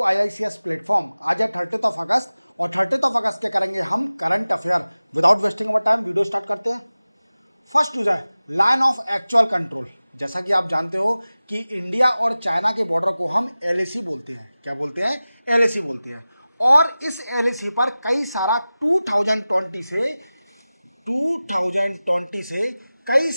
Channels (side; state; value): both; inverted; correlation -0.97